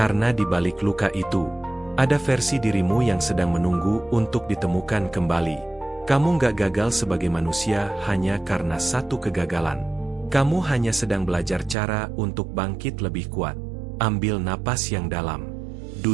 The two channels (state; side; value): drops out; left; at 11.8 s